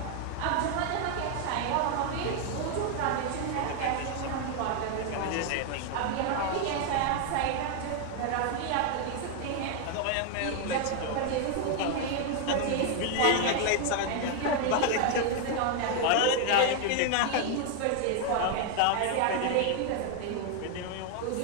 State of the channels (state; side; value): different; both; correlation 0.00